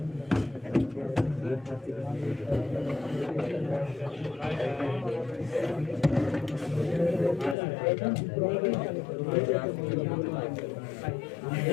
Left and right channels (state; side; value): drops out; right; at 7.6 s